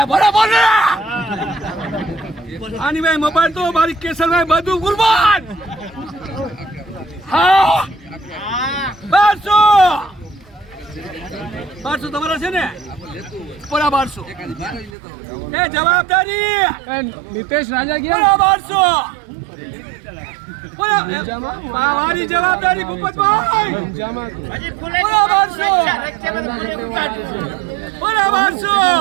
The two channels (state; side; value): drops out; left; at 14.9 s